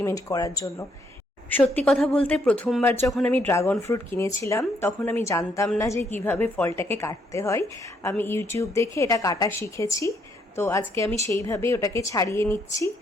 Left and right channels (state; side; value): normal; both; correlation 0.72